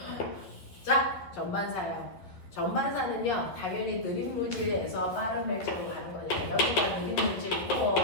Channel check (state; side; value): late; right; 12 ms